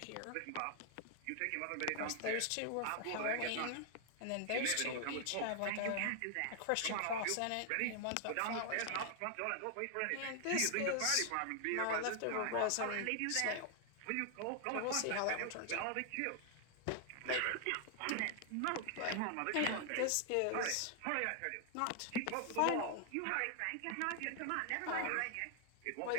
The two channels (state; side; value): different; both; correlation 0.00